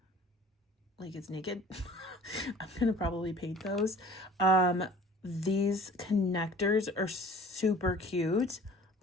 it's naked. I'm going to probably paint those. These connectors are super cute.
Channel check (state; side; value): normal; both; correlation 0.47